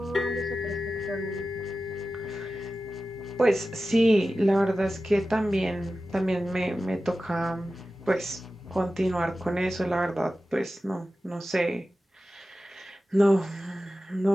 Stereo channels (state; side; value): normal; both; correlation 0.94